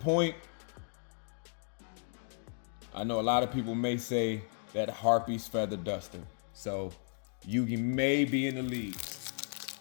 I know a lot of people may say that Harpy's feather duster, so Yugi may be in the lead.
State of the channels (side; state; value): right; silent; digital silence